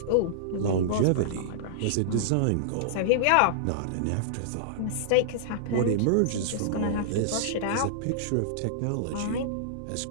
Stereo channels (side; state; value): both; different; correlation -0.02